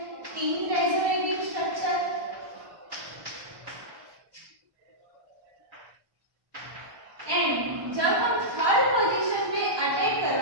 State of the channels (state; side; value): late; left; 1.1 ms